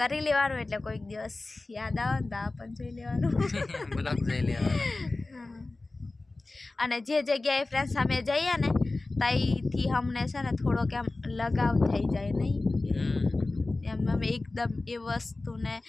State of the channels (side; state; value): right; quieter; 3.2 dB